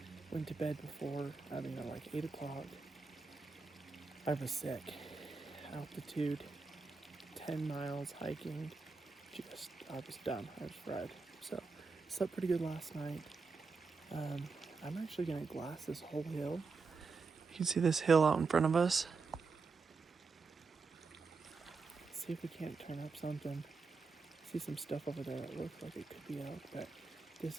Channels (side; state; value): left; quieter; 4.5 dB